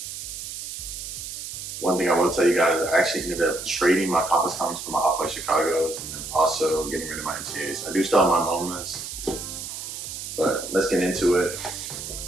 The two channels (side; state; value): right; noise; hiss, 8 dB below the sound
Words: One thing I will tell you guys, I actually ended up trading my complex cons for my Off-White Chicago's and then also getting rid of my MCAs. I do still have my MoMAs, but let's get into it.